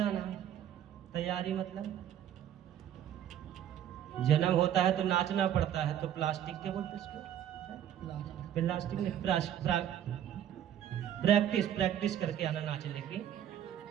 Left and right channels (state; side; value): quieter; left; 10.5 dB